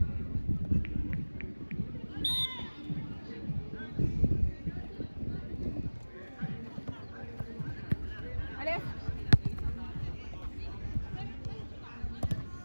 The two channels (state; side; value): inverted; both; correlation -1.00